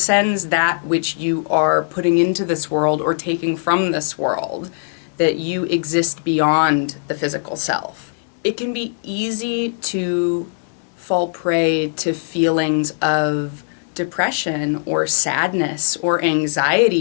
that which you are putting into this world or taking from this world, that you exist beyond the physical self. It can be easy to fall prey to feelings of depression or sadness or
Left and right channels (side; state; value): right; silent; digital silence